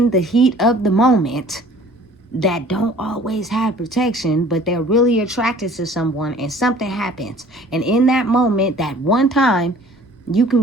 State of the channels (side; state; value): both; normal; correlation 0.50